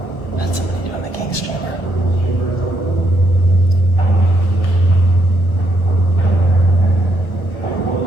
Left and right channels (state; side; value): late; right; 1.2 ms